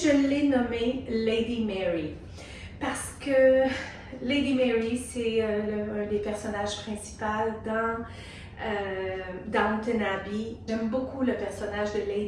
l'ai nommé Lady Mary parce que Lady Mary, c'est un des personnages principaux dans Downton Abbey. J'aime beaucoup le personnage de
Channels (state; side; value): identical; both; correlation 1.00